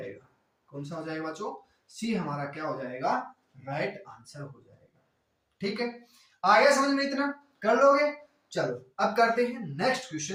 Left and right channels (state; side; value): identical; both; correlation 1.00